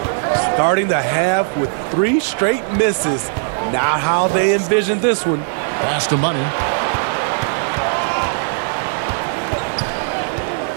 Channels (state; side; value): silent; left; digital silence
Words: Starting the half with 3 straight misses. Not how they envisioned this one. Pass to Money.